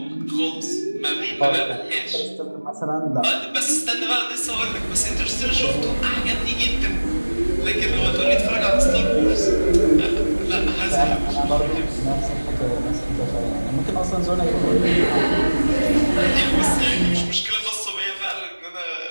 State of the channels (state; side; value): inverted; both; correlation -1.00